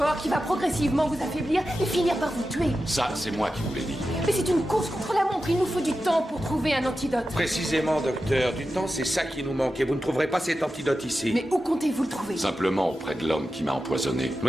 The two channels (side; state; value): both; normal; correlation 0.92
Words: qui va progressivement vous affaiblir et finir par vous tuer. Ça, c'est moi qui vous l'ai dit. Mais c'est une course contre la montre, il nous faut du temps pour trouver un antidote. Précisément, docteur. Du temps, c'est ça qui nous manque et vous ne trouverez pas cet antidote ici. Mais où comptez-vous le trouver? Simplement auprès de l'homme qui m'a empoisonné.